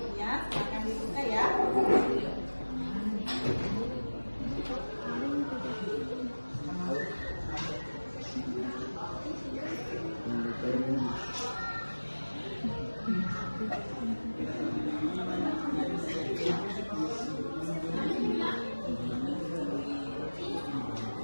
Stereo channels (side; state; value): both; inverted; correlation -1.00